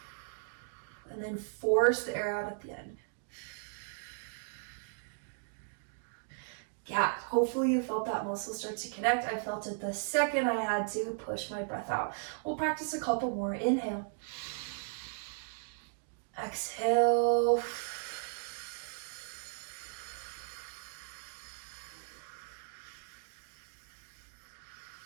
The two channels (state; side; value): silent; left; digital silence